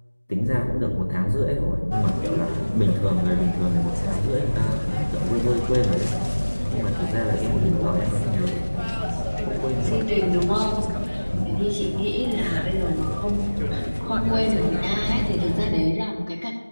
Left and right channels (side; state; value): both; inverted; correlation -1.00